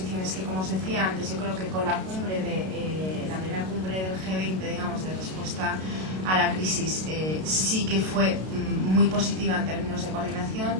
que como os decía antes, yo creo que con la cumbre la primera cumbre del G20, digamos, de respuesta a la crisis, sí que fue muy positiva en términos de coordinación,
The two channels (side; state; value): left; late; 32 ms